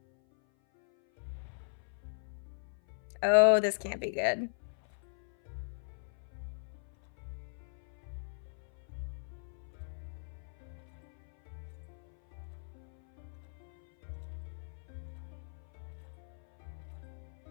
Oh, this can't be good.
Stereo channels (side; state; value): right; silent; 52 dB below the other